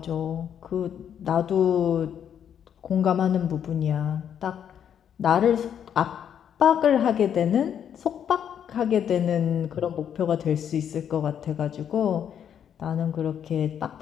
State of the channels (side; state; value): right; quieter; 8.8 dB